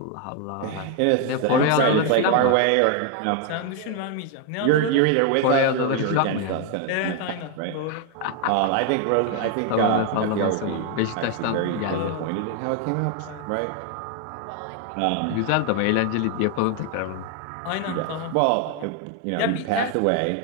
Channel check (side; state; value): both; different; correlation 0.01